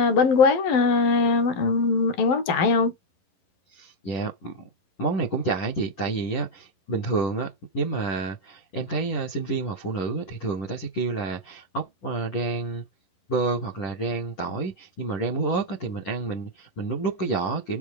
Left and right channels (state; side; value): late; right; 11 ms